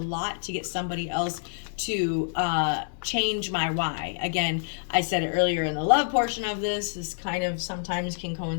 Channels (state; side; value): silent; right; digital silence